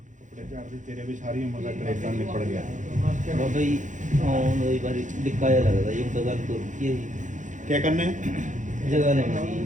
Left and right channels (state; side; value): late; left; 0.36 ms